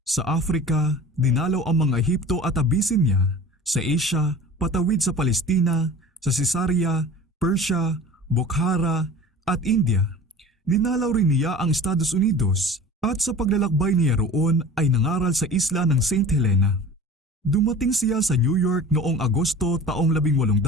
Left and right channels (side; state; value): both; normal; correlation 0.40